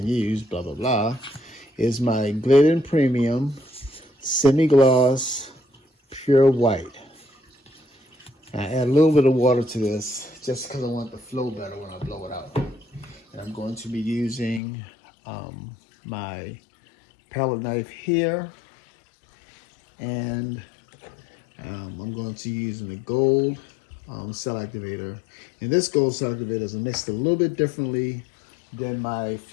used, blah, blah, blah, is my Glidden Premium Semi-Gloss Pure White. I add a little bit of water to this just because I want it to flow better when I blow it out. And I'm going to be using my palette knife here, and I'm going to use a gold cell activator. And this gold cell activator is mixed a little bit differently than my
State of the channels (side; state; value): right; drops out; at 14.6 s